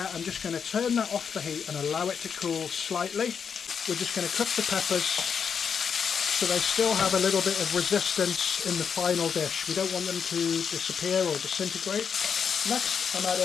I'm just going to turn that off the heat and allow it to cool slightly. We're just going to cook the peppers so they still have a little bit of resistance in the final dish. We don't want them to disappear or disintegrate. Next, I'm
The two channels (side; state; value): right; quieter; 6.7 dB